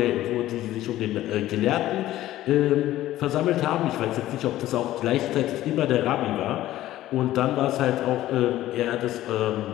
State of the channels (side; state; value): right; quieter; 14.6 dB